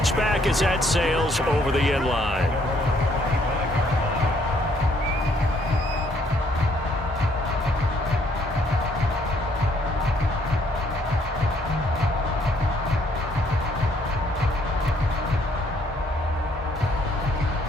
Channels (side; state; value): both; normal; correlation 0.67